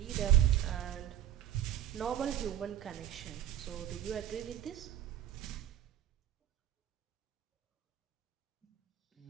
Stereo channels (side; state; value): left; quieter; 11.6 dB